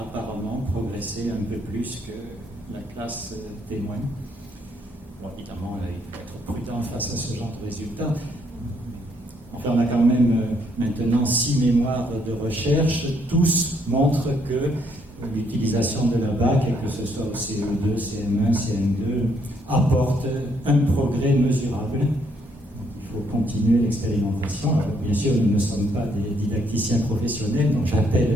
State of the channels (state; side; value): normal; both; correlation 0.71